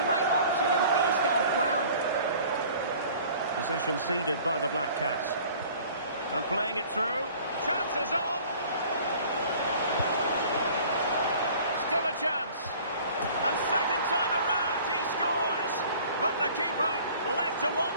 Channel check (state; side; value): inverted; both; correlation -0.49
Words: the right option and finished it off well. Possession ceded by the Black Cats. And playing it through. Chances on. Still a chance. And second time around he scores. But the keeper left to